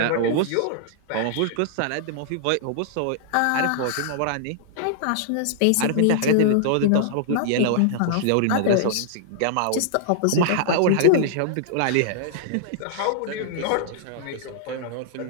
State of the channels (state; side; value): different; both; correlation -0.01